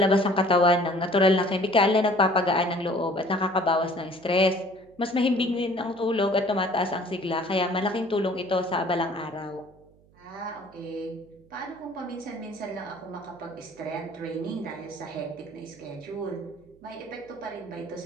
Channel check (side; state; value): right; noise; hum, 29 dB below the sound